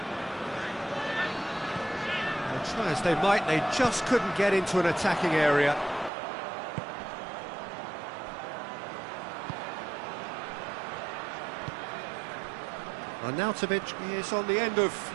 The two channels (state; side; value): drops out; left; at 6.1 s